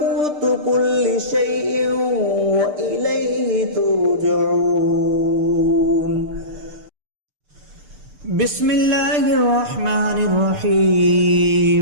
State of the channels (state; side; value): late; left; 6.7 ms